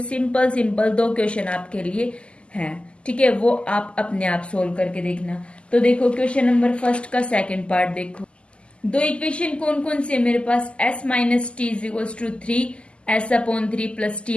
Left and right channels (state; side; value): late; right; 0.053 ms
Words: सिंपल सिंपल 2 क्वेश्चन आपके लिए हैं, ठीक है, वो आप अपने आप सोल्व करके देखना। तो देखो क्वेश्चन नंबर फर्स्ट का सेकेंड पार्ट देखो। 2 इक्वेशन कौन कौन से मेरे पास, s minus T is equals to 3, s upon 3 plus